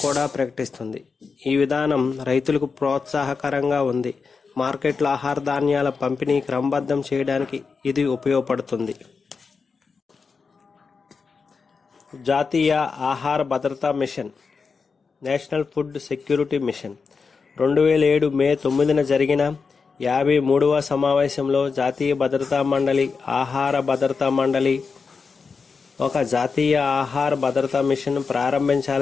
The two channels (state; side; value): quieter; right; 5.0 dB